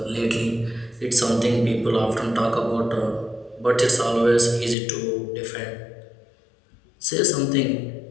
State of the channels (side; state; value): right; drops out; at 4.8 s